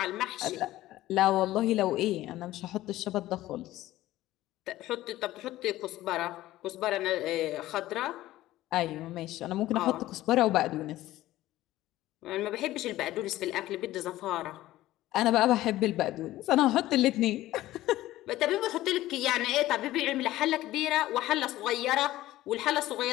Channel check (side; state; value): right; quieter; 15.6 dB